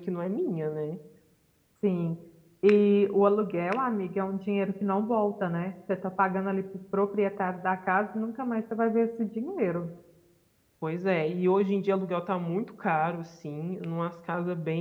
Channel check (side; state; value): both; identical; correlation 1.00